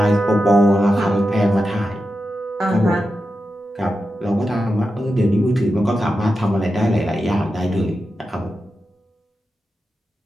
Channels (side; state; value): both; normal; correlation 0.90